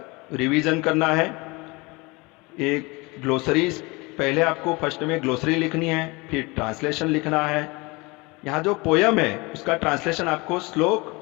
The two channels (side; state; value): right; quieter; 25.5 dB